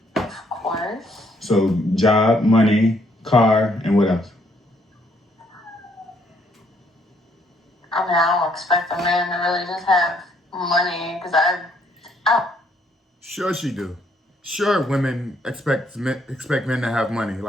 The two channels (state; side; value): normal; both; correlation 0.69